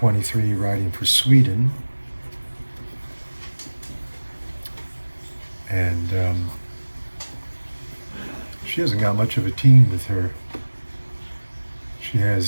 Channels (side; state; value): both; inverted; correlation -1.00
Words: riding for Sweden. And she hasn't got much of a team with her. She